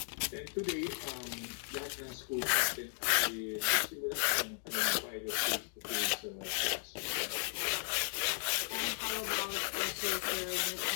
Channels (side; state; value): right; silent; 54 dB below the other